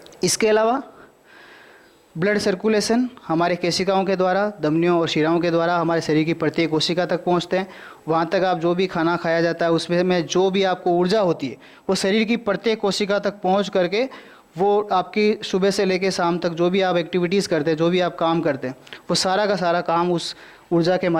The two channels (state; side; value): identical; both; correlation 1.00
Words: इसके अलावा ब्लड सर्कुलेशन हमारे केशिकाओं के द्वारा, धमनियों और शिराओं के द्वारा हमारे शरीर की प्रत्येक कोशिका तक पहुंचते हैं। वहाँ तक आप जो भी खाना खाया जाता है उसमें जो भी आपको ऊर्जा होती है वो शरीर की प्रत्येक कोशिका तक पहुंच करके वो आपकी सुबह से लेकर शाम तक जो भी आप एक्टिविटीज़ करते हैं, जो भी आप काम करते हैं, वो सारा का सारा काम उस ऊर्जा के